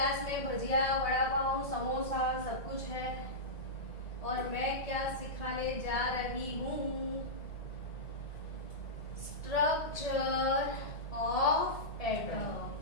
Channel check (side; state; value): right; late; 1.7 ms